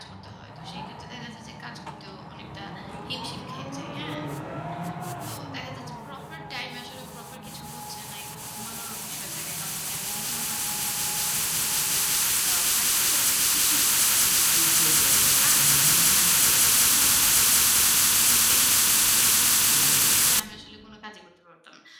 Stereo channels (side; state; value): both; identical; correlation 1.00